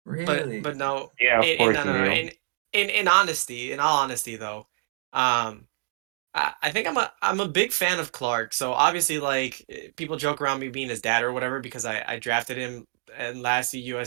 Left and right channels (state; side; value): silent; left; digital silence